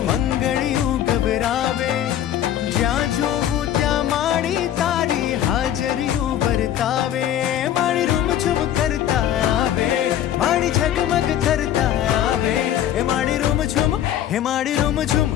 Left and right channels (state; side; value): quieter; right; 11.2 dB